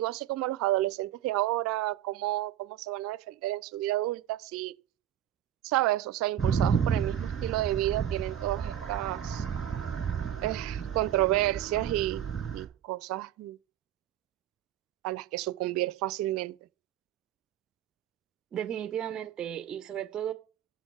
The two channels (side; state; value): left; quieter; 11.4 dB